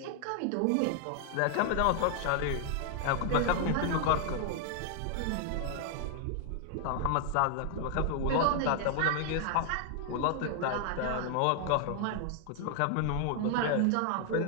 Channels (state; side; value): different; both; correlation 0.00